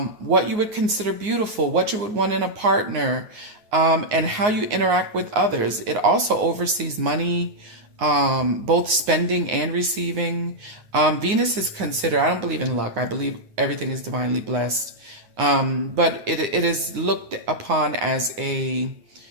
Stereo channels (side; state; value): left; late; 9.6 ms